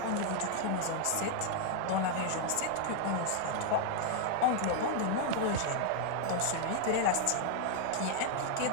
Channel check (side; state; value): both; different; correlation 0.00